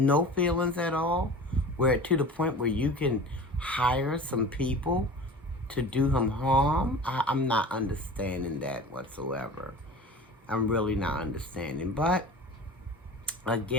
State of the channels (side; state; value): both; normal; correlation 0.37